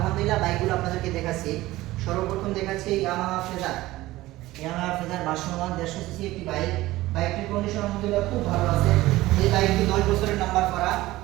বাইকগুলো আপনাদেরকে দেখাচ্ছি। সর্বপ্রথম দেখাচ্ছি Yamaha phasor. Yamaha phasor version 1 150 CC একটি বাইক। বাইকটির কন্ডিশন আলহামদুলিল্লাহ খুব ভালো আছে। এই বাইকটি 10 বছরের নাম্বার করা।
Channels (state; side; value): quieter; left; 17.5 dB